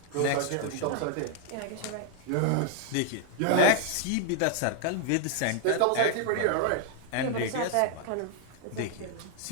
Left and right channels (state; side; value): different; both; correlation 0.00